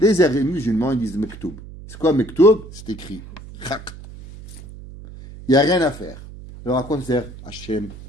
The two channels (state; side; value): noise; right; hum, 16 dB below the sound